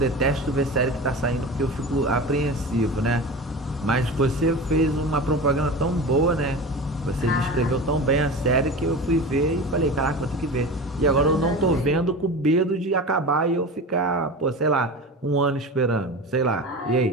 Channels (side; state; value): both; normal; correlation 0.31